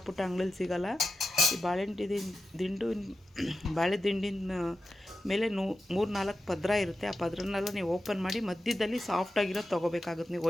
ಪುಟ್ಟ ಅಂಗಡಿಲಿ ಸಿಗೋಲ್ಲ. ಈ ಬಾಳೆ ದಿಂಡಿನ ಮೇಲೆ 3-4 ಪದ್ರ ಇರುತ್ತೆ. ಆ ಪದ್ರನೆಲ್ಲ ನೀವು ಓಪನ್ ಮಾಡಿ ಮಧ್ಯದಲ್ಲಿ ಸಾಫ್ಟಾಗಿರೋದು ತೊಗೋಬೇಕಾಗುತ್ತೆ. ನೀವು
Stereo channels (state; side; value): normal; both; correlation 0.91